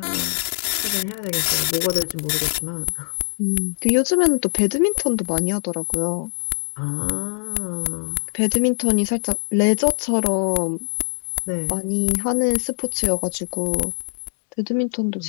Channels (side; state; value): right; silent; digital silence